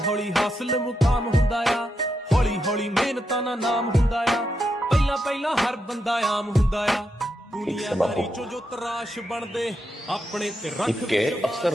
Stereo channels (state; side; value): normal; both; correlation 0.83